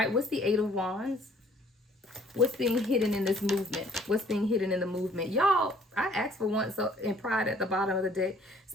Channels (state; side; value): normal; both; correlation 0.58